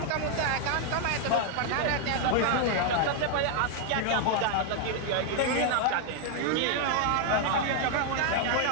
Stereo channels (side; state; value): both; different; correlation 0.00